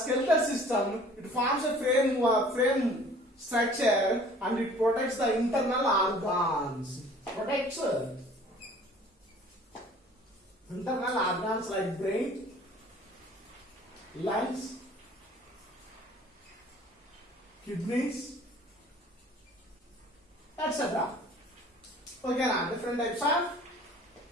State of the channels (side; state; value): both; normal; correlation 0.50